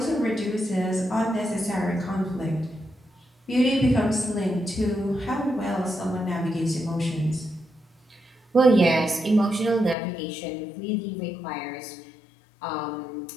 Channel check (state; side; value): drops out; right; at 10.0 s